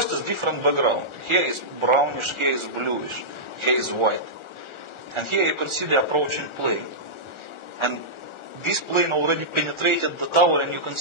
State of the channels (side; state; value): left; late; 1.4 ms